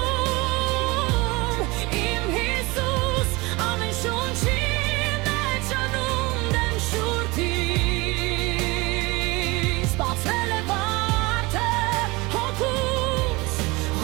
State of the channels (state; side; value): quieter; left; 24.0 dB